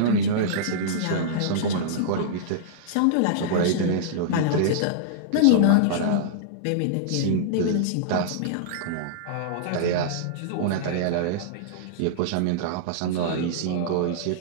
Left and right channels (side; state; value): both; different; correlation -0.02